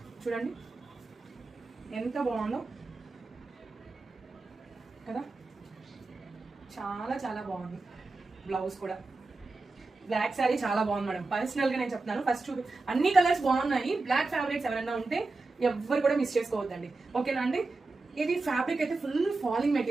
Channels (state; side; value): quieter; left; 3.5 dB